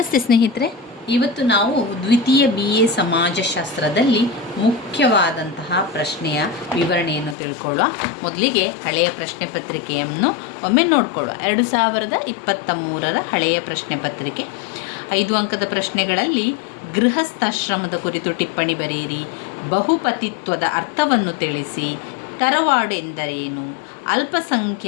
ಸ್ನೇಹಿತರೆ, ಇವತ್ತು ನಾವು ದ್ವಿತೀಯ BA ಸಮಾಜಶಾಸ್ತ್ರದಲ್ಲಿ ಮುಖ್ಯವಾದಂತಹ ಪ್ರಶ್ನೆಯ ವಿವರಣೆಯನ್ನು ತಿಳ್ಕೊಳ್ಳುವ. ಮೊದಲಿಗೆ ಹಳೆಯ ಪ್ರಶ್ನೆ ಪತ್ರಿಕೆಯನ್ನು ಒಮ್ಮೆ ನೋಡಿಕೊಳ್ಳುವ. 2023ರ ಹಳೆಯ ಪ್ರಶ್ನೆ ಪತ್ರಿಕೆ 5 ಅಂಕದ ಪ್ರಶ್ನೆಗಳಲ್ಲಿ ಗೃಹಸ್ಥಾಶ್ರಮದ ಕುರಿತು ಟಿಪ್ಪಣಿ ಬರೆಯಿರಿ, ಬಹುಪತಿತ್ವದ ಅರ್ಥವನ್ನು ತಿಳಿಸಿ, ತರವಾಡು ಎಂದರೇನು,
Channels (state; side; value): drops out; right; at 7.4 s